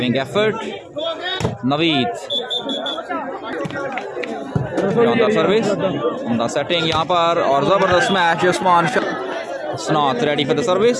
effort, Naveed, शानदार सर्विस, उम्दा सेटिंग यहाँ पर और जबरदस्त match, Usman Hasnat ready for the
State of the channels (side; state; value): both; identical; correlation 1.00